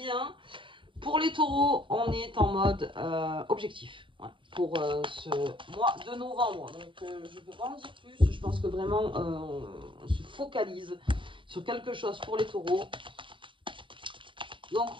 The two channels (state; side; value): late; left; 0.24 ms